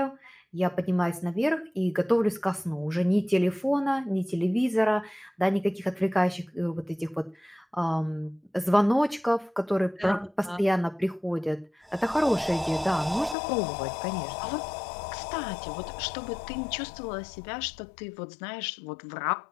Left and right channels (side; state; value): right; drops out; at 13.4 s